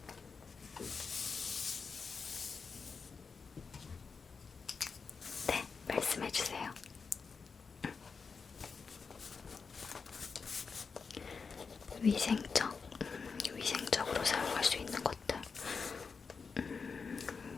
네, 말씀해주세요. 위생적으로 사용할 수 있는 것들.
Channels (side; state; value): right; quieter; 5.2 dB